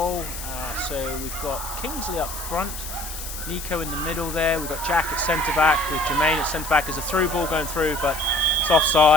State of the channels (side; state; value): left; noise; hiss, 9 dB below the sound